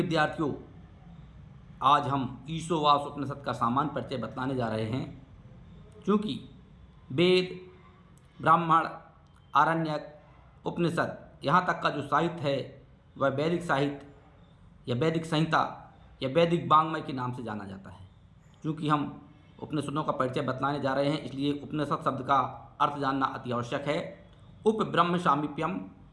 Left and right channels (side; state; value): both; identical; correlation 1.00